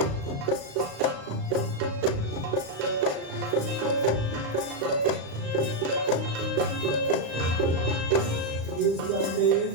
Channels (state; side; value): late; left; 35 ms